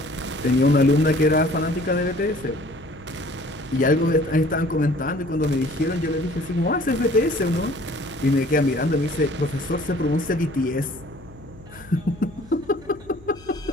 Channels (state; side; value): noise; left; hum, 22 dB below the sound